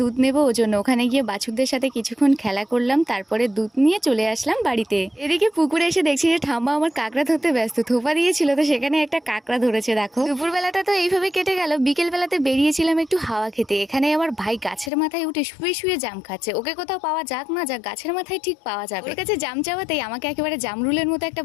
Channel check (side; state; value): right; drops out; at 14.9 s